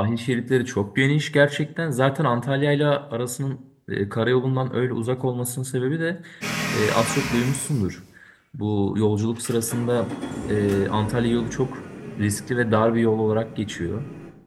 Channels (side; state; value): both; identical; correlation 1.00